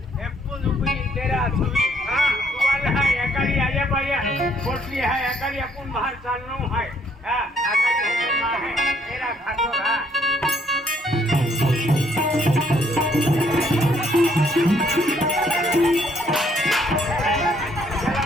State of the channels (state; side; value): normal; both; correlation 0.67